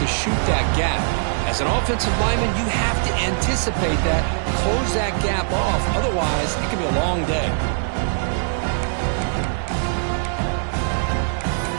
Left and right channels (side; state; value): left; silent; digital silence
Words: to shoot that gap? As an offensive lineman, you have to anticipate that, close that gap off. Otherwise, it could be a long day.